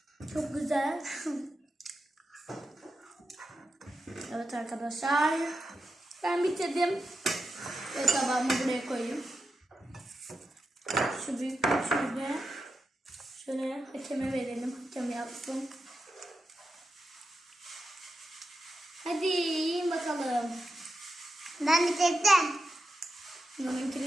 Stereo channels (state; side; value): normal; both; correlation 0.89